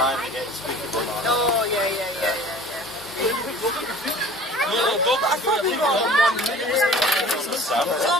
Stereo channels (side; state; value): both; normal; correlation 0.45